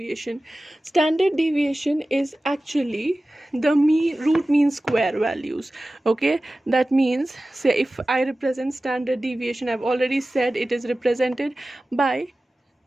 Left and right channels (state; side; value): normal; both; correlation 0.96